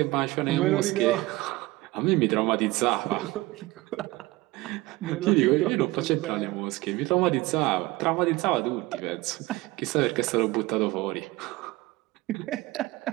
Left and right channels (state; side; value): quieter; left; 20.1 dB